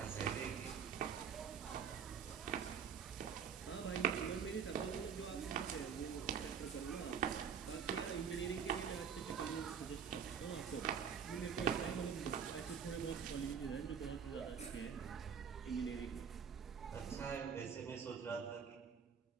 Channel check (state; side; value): quieter; left; 7.0 dB